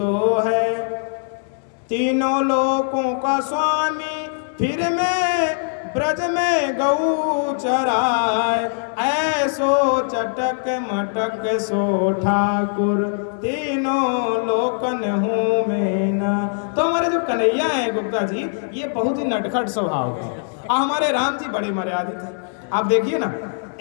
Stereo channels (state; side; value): silent; right; digital silence